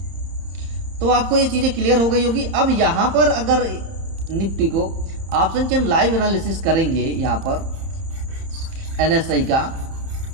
तो आपको ये चीज़ें क्लियर हो गई होगी। अब यहाँ पर अगर निफ्टी को ऑप्शन चेन लाइव एनालिसिस करेंगे यहाँ पर NSI का,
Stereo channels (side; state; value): left; late; 31 ms